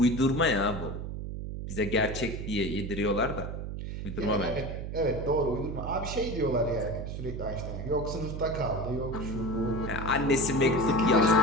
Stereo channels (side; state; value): right; noise; hum, 6 dB below the sound